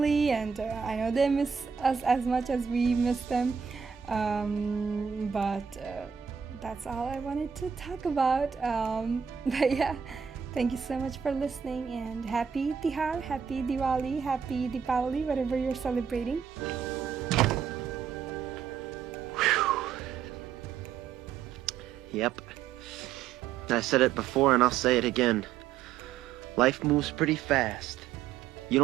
and I know they miss us as much as we miss them. But that's all I wanted to talk about. But yeah. Thank you so much for listening, and happy Tihar, happy Diwali, happy Deepavali, whatever you're celebrating. Yep. I said it before and I'll say it again. Life moves pretty fast. You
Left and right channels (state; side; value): quieter; left; 7.2 dB